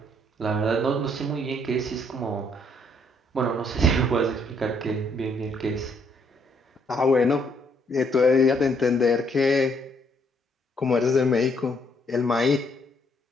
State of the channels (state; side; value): normal; both; correlation 0.69